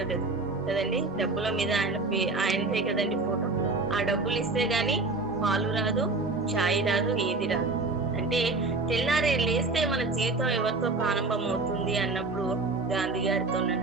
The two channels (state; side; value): quieter; left; 3.4 dB